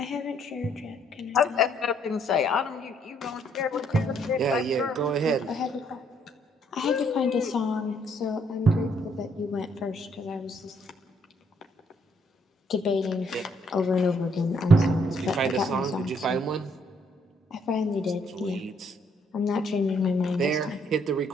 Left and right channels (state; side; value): normal; both; correlation 0.69